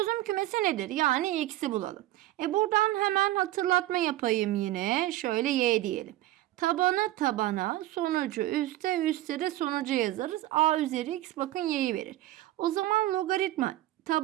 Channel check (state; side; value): quieter; left; 15.7 dB